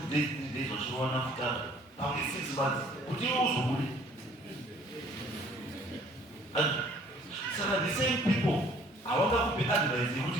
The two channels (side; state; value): both; normal; correlation 0.57